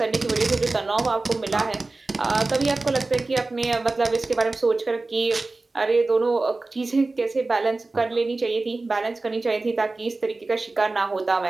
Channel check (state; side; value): quieter; left; 3.3 dB